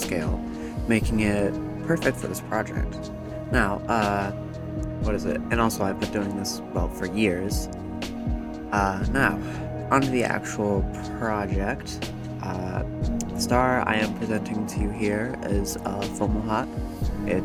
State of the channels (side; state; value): both; identical; correlation 1.00